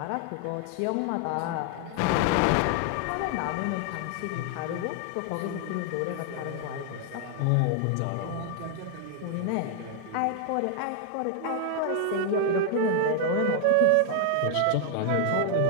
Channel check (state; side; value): different; both; correlation 0.00